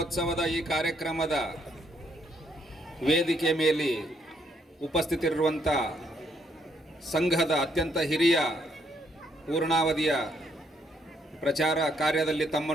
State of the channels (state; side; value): normal; both; correlation 0.71